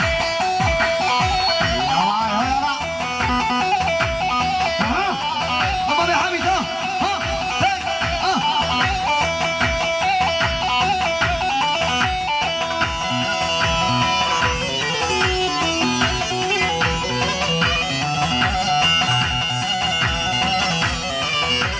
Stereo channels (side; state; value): both; identical; correlation 1.00